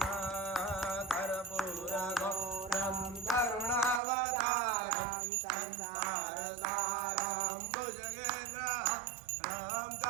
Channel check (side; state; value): left; drops out; at 4.0 s